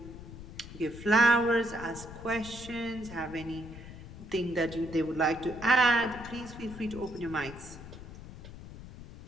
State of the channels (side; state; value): left; noise; rumble, 13 dB below the sound